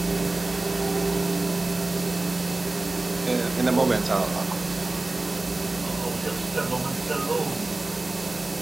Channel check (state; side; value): quieter; left; 3.0 dB